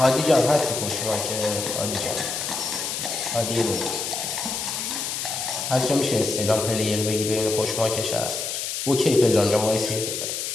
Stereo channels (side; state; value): left; noise; hiss, 3 dB below the sound